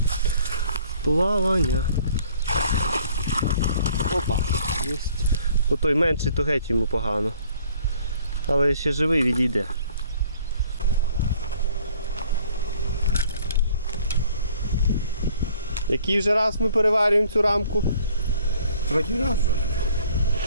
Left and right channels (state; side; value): inverted; both; correlation -0.57